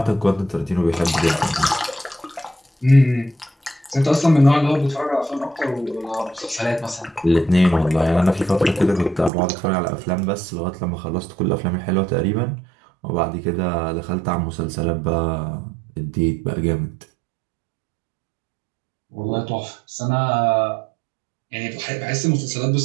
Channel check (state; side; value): drops out; left; at 9.3 s